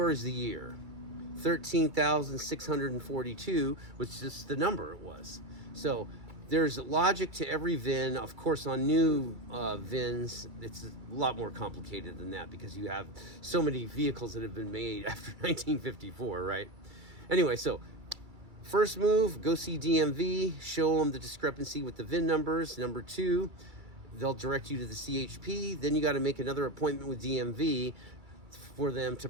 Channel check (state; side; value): late; left; 2.3 ms